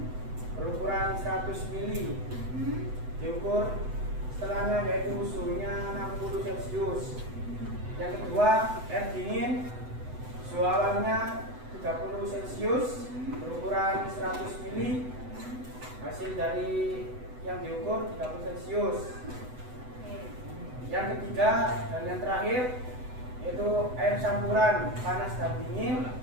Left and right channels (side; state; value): left; late; 8.0 ms